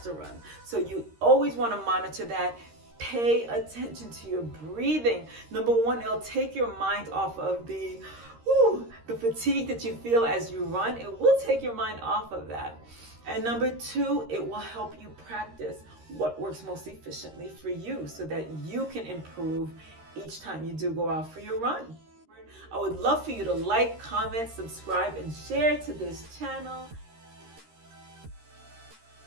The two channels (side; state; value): left; late; 13 ms